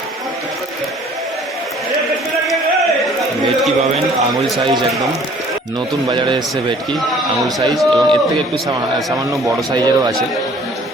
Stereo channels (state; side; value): normal; both; correlation 0.54